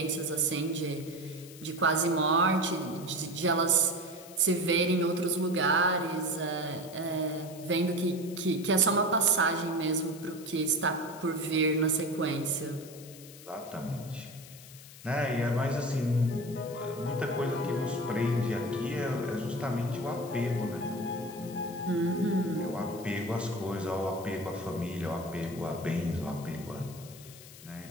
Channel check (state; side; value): noise; left; hiss, 18 dB below the sound